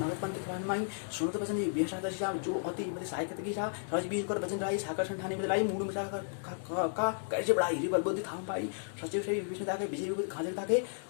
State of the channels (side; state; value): right; silent; digital silence